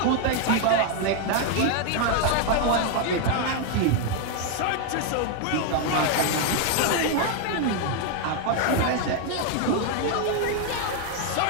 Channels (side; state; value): both; different; correlation 0.01